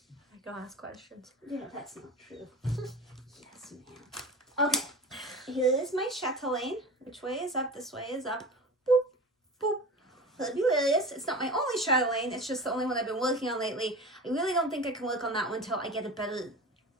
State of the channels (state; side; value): normal; both; correlation 0.32